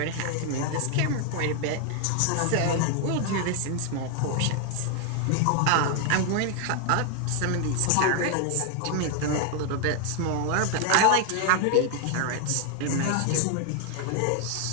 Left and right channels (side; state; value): both; different; correlation 0.00